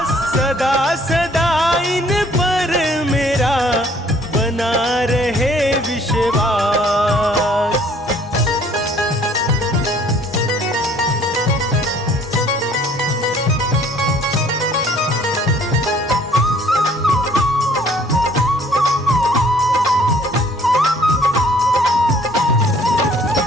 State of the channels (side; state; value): both; normal; correlation 0.58